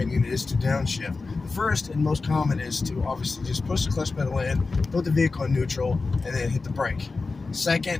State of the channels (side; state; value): right; quieter; 4.0 dB